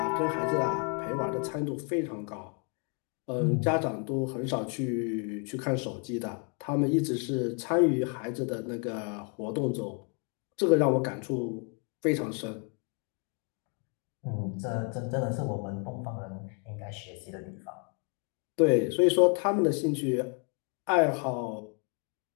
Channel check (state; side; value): quieter; right; 35.9 dB